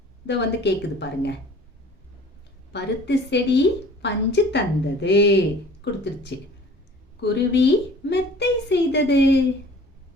இத வந்து கேக்குது பாருங்க. பருத்தி செடி பஞ்சு தந்தது, கொடுத்துருச்சு. குருவி மெத்தை செய்தது?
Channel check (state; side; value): normal; both; correlation 0.48